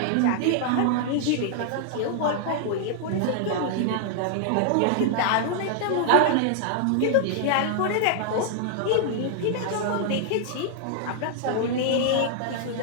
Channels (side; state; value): both; different; correlation -0.01